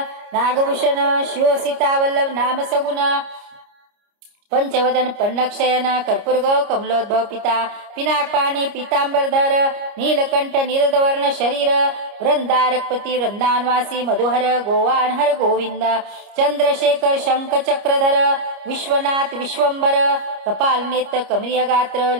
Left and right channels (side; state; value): left; late; 29 ms